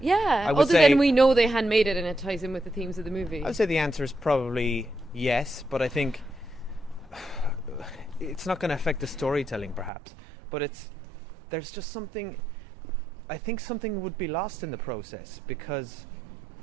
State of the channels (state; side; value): drops out; left; at 9.9 s